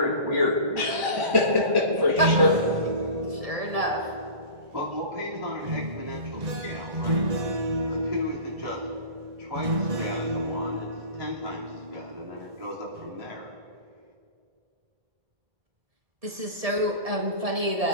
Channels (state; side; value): late; left; 1.7 ms